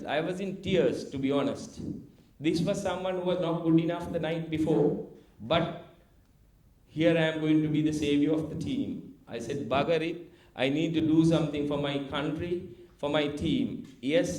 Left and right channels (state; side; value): identical; both; correlation 1.00